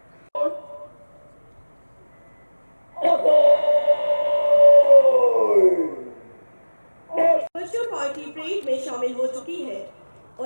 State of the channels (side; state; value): both; inverted; correlation -1.00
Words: शामिल हो चुकी है